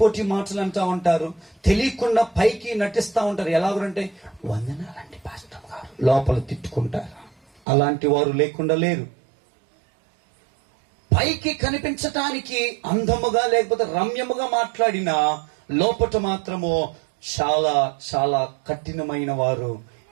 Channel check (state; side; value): drops out; left; at 7.6 s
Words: మాటలు అంటా ఉంటారు, తెలియకుండా పైకి నటిస్తా ఉంటారు. ఎలాగంటే వందనాలంటే పాస్టర్ గారు, లోపల తిట్టుకుంటారు. అలాంటి వారు లేకుండా లేరు. పైకి కనిపించటానికి అందముగా లేకపోతే రమ్యముగా మాట్లాడినా లోపట మాత్రము చాలా చాలా కఠినమైన వారు